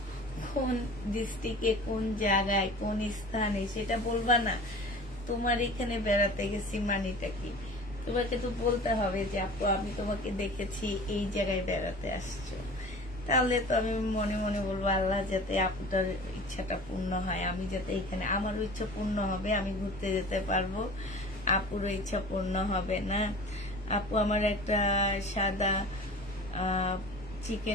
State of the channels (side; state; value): both; normal; correlation 0.40